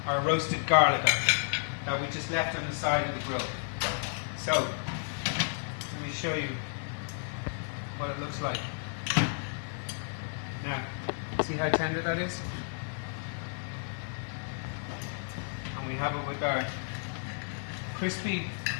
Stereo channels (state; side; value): silent; right; digital silence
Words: our roasted garlic that we just left on the side of the grill. So, let me show you what it looks like. Now, see how tender that is? And we have it with our crispy